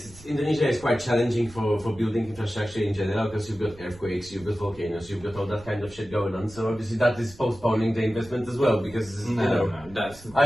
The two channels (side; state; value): right; noise; rumble, 21 dB below the sound